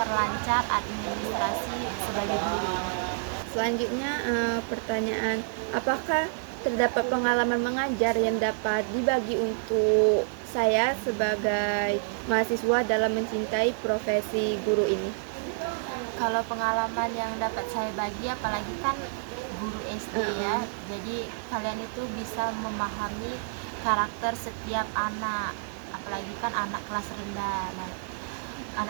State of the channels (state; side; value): silent; left; digital silence